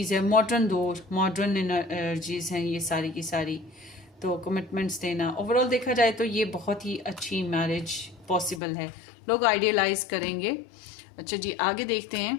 है. मॉडर्न दौर, मॉडर्न एनर्जीज हैं ये सारी की सारी. तो कमिटमेंट्स देना, ओवरऑल देखा जाए तो ये बहुत ही अच्छी मैरिज पॉसिबल है. लोग आइडियलाइज करेंगे. अच्छा जी, आगे देखते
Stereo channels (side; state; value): right; drops out; at 8.6 s